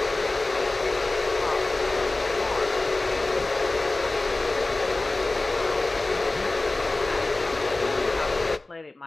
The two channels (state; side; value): quieter; right; 3.1 dB